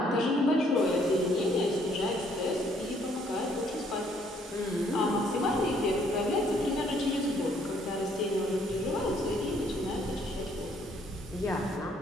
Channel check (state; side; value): normal; both; correlation 0.65